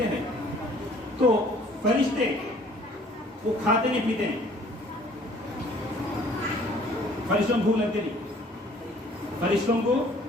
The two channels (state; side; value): normal; both; correlation 0.56